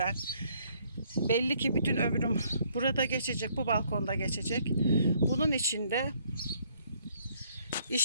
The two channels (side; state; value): both; inverted; correlation -0.65